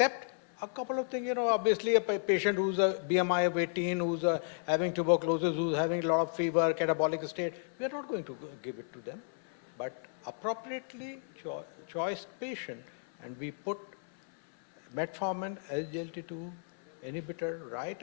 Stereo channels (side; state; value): right; silent; 56 dB below the other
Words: a couple of things, obviously a patient who's a BMI of 18, who's having tuberculosis, who's having a lot of fever, catabolic state, we are not going to give it to them. But appropriately choice patient, and we put metformin, SGLT2 inhibitor right